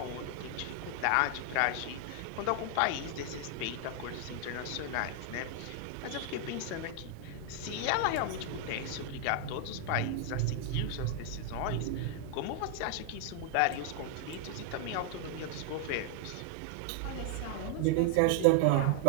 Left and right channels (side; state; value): both; different; correlation 0.00